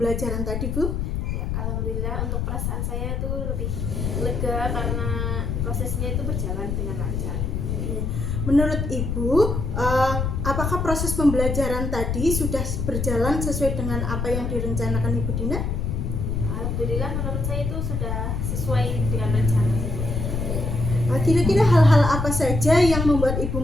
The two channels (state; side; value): noise; left; rumble, 1 dB below the sound